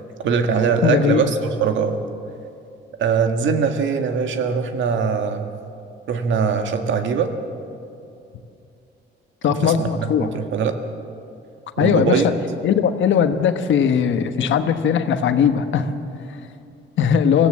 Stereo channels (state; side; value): normal; both; correlation 0.30